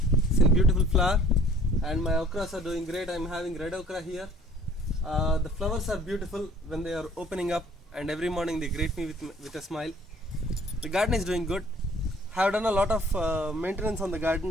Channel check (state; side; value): normal; both; correlation 0.54